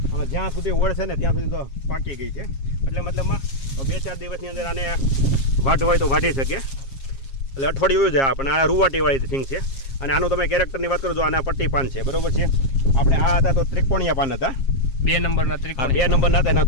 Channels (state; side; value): late; right; 7.4 ms